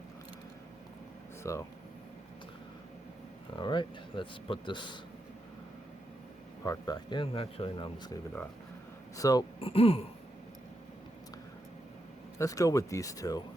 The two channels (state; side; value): normal; both; correlation 0.84